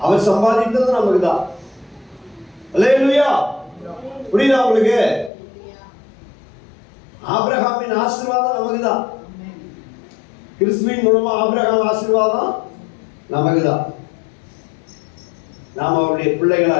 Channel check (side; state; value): right; drops out; at 5.3 s